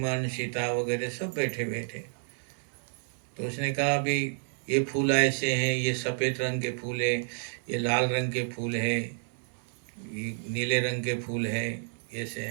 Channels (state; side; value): silent; left; digital silence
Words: सीता वगैरह सब बैठे हुए थे। तो उसने कहा अभी ये फूल ऐसे हैं, ये सफ़ेद रंग के फूल है, ये लाल रंग के फूल है, ये नीले रंग के फूल है, ऐसे